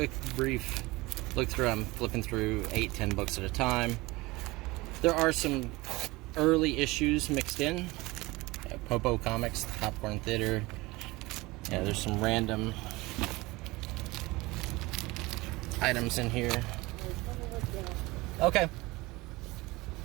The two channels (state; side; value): quieter; left; 21.9 dB